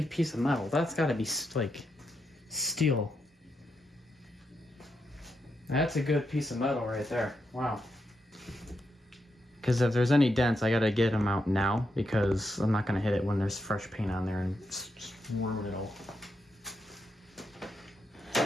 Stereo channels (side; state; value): both; normal; correlation 0.83